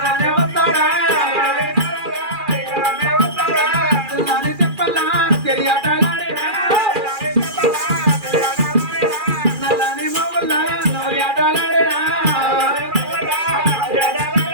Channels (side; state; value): left; late; 2.4 ms